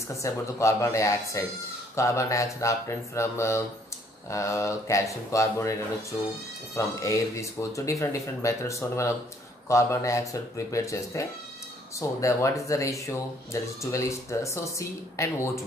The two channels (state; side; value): normal; both; correlation 0.63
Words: about the carbon dioxide. Carbon dioxide obtained from calcium carbonate from air. This goes to different methods. So carbon dioxide prepared cheste. So what is the ratio? There is 12 so C and